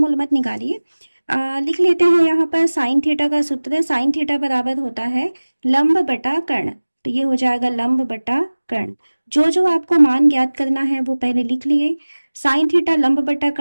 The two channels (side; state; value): both; inverted; correlation -1.00